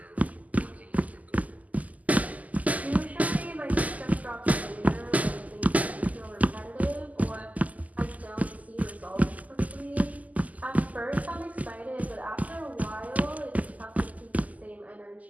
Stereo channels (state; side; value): late; left; 0.076 ms